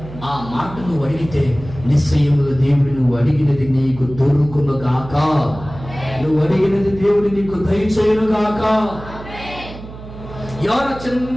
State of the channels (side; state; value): right; noise; hum, 14 dB below the sound